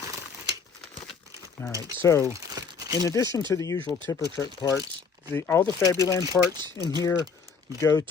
All right, so in addition to the usual tipper truck parts, all the Fabuland parts in here go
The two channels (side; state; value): right; quieter; 5.5 dB